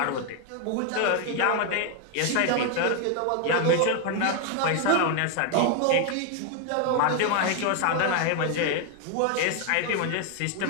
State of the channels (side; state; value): both; different; correlation 0.01